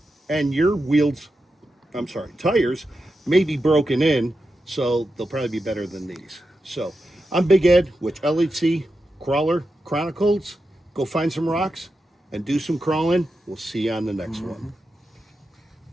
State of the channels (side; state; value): both; normal; correlation 0.89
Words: and your tires may be broken in, so they'll probably be better than these. So I'm Big Ed with LHC Crawler Chronicles. Go find some rocks and do some crawling. We'll see you on the next one.